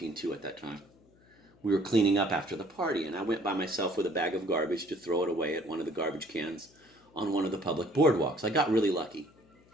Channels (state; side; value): noise; left; hum, 29 dB below the sound